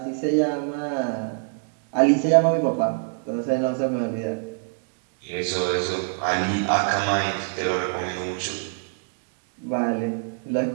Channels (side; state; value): left; silent; digital silence